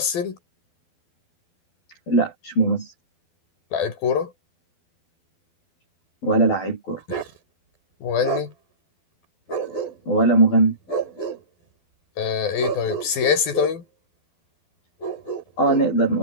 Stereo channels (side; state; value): right; late; 12 ms